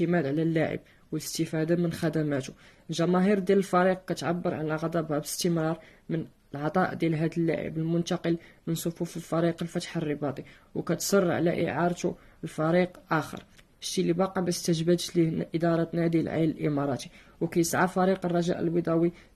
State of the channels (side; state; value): both; identical; correlation 1.00